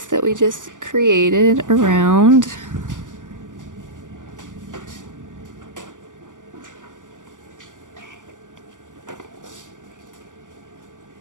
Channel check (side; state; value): left; late; 0.87 ms